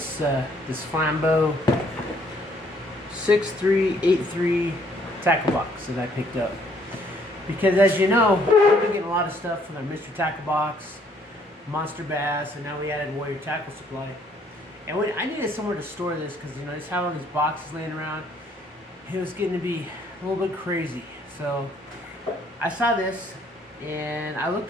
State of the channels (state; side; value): normal; both; correlation 0.65